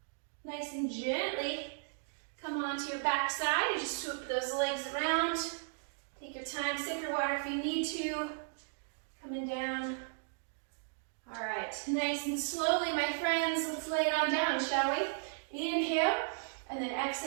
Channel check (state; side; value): silent; left; digital silence